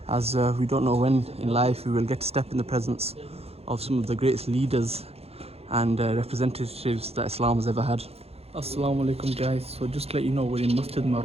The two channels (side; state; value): left; late; 0.29 ms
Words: as we don't know when in life we will get to step in the presence of some of the greatest leaders and representatives that Islam has ever had. Assalamu alaikum guys, so just to let you know, we're in Masjid